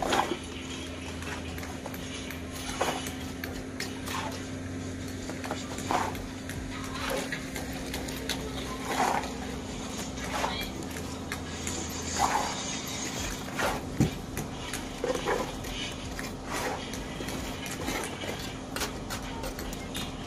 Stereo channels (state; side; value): identical; both; correlation 1.00